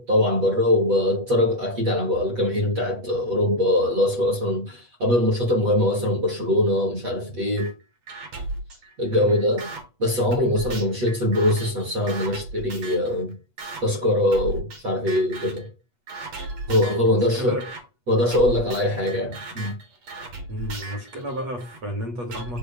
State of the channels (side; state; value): left; late; 8.2 ms